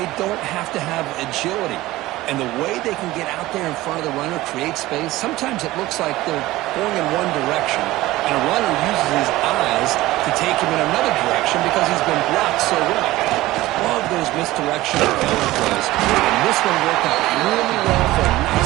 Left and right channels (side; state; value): left; quieter; 17.6 dB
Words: don't have to have agility. And the way they can get out there in front of the runner, create space, sometimes it looks like they're going in one direction. And a runner uses his eyes to take him in another direction because he's been blocked so well. Love those misdirection and counter plays. And this one worked out really well for a